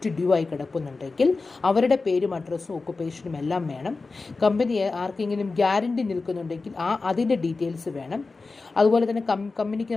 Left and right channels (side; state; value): right; quieter; 3.9 dB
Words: ഡ്യൂ ആയി കിടക്കുന്നുണ്ടെങ്കിൽ അവരുടെ പേരും അഡ്രസ്സും ഒക്കുപേഷനും എല്ലാം വേണം. കമ്പനി ആർക്കെങ്കിലും ഗ്യാരണ്ടി നിൽക്കുന്നുണ്ടെങ്കിൽ അതിൻ്റെ ഡീറ്റെയിൽസ് വേണം. അതുപോലെ തന്നെ കമ്പനിക്ക്